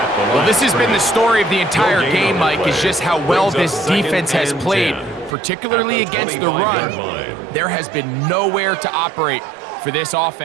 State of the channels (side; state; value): left; drops out; at 5.4 s